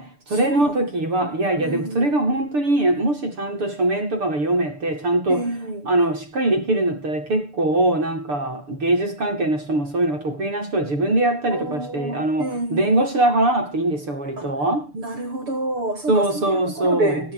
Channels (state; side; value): late; left; 6.8 ms